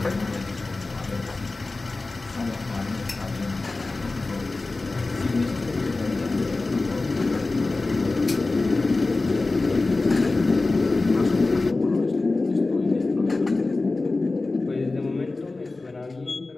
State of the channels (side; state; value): right; quieter; 3.4 dB